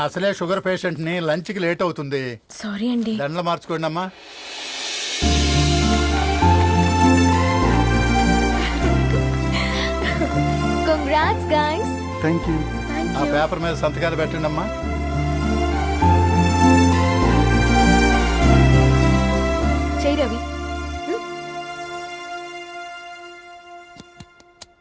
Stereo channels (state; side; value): identical; both; correlation 1.00